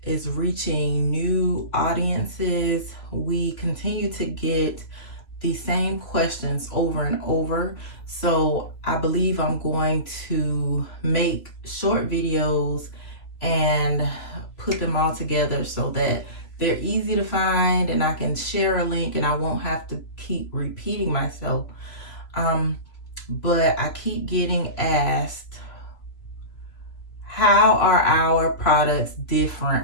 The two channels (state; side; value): late; right; 2.7 ms